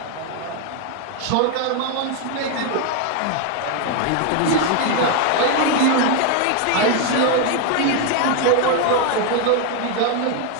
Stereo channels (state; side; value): different; both; correlation 0.01